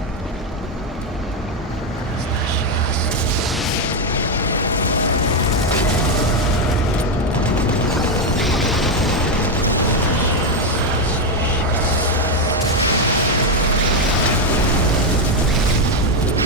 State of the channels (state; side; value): normal; both; correlation 0.06